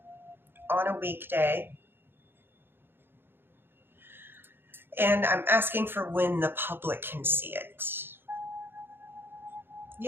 on a weekday. And I'm asking for when the public can see it.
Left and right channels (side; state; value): left; late; 0.10 ms